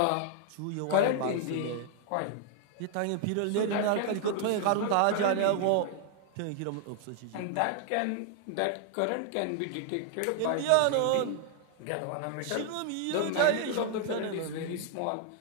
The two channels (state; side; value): different; both; correlation 0.00